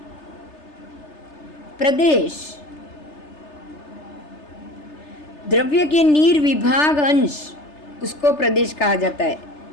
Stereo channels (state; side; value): late; right; 3.3 ms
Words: प्रदेश, द्रव्य के निर्विभाग अंश, उसको प्रदेश कहा जाता है,